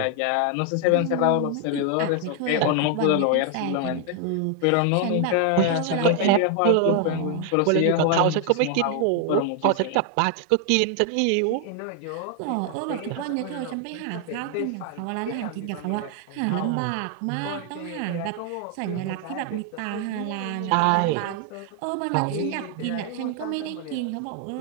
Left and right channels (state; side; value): different; both; correlation 0.00